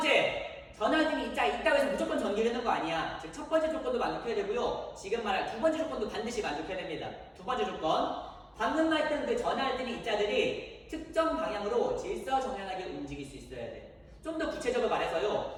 전하를 띠는 입자가 있다고 해서 무조건 전기를 흐르는 거 아니야. 즉 첫 번째 조건도 만족해야 되고요. 지금 말할 두 번째 조건도 반드시 만족해야 됩니다. 두 번째 조건, 방금 말했던 그 전하를 띠는 입자들이 특정 방향으로 질서정연하게 움직일 수 있어야 돼. 좀 더 구체적으로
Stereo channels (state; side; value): identical; both; correlation 1.00